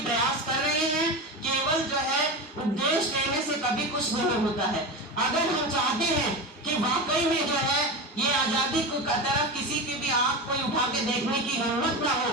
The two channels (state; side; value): normal; both; correlation 0.23